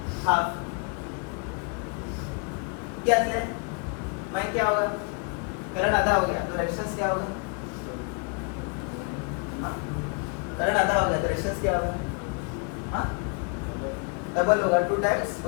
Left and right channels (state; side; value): quieter; right; 34.5 dB